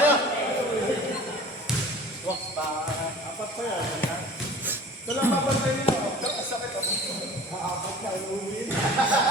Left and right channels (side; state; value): both; normal; correlation 0.43